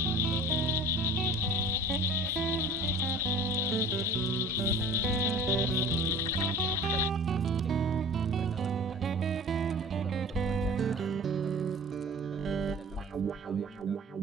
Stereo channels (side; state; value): both; normal; correlation 0.42